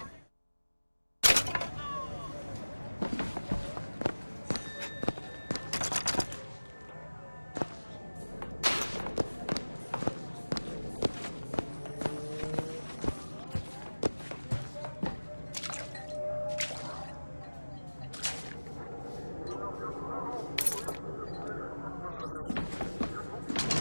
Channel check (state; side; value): inverted; both; correlation -1.00